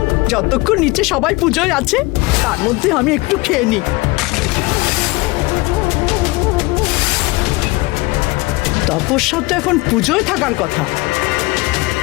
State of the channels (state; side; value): quieter; right; 23.2 dB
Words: যতক্ষণ নিচে সবাই পুজোয় আছে তার মধ্যে আমি একটু খেয়ে নিই। তপস্যা তো এখন পুজোয় থাকার কথা,